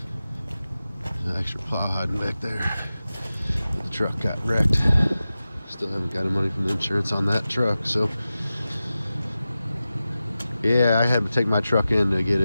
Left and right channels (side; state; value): both; inverted; correlation -0.94